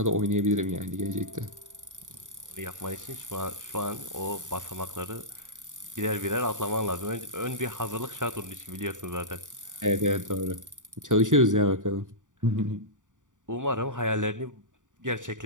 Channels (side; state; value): left; late; 0.87 ms